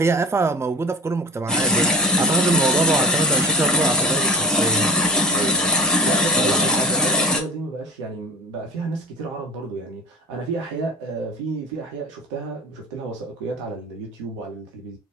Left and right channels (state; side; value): normal; both; correlation 0.38